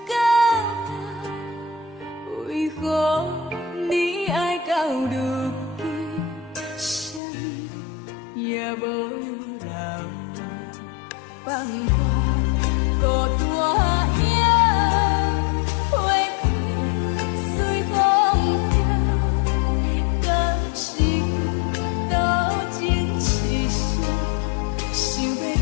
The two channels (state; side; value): drops out; right; at 7.2 s